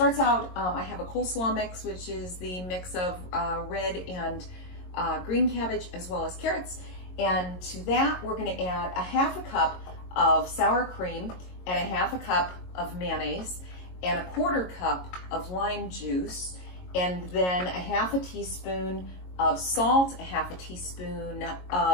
out, I have a coleslaw mix, which is the mix of red and green cabbage as well as carrots. And to that, we're gonna add a half a cup of sour cream and a half a cup of mayonnaise and a quarter cup of lime juice, and then a half a teaspoon of salt, a half a teaspoon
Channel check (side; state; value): right; late; 22 ms